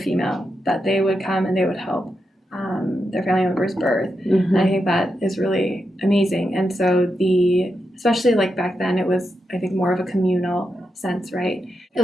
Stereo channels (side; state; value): both; normal; correlation 0.86